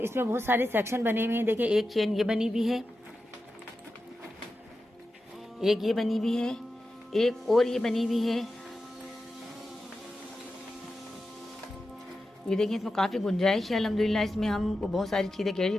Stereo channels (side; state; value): both; normal; correlation 0.91